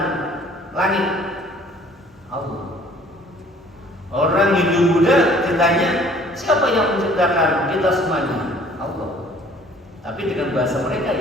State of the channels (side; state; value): both; normal; correlation 0.55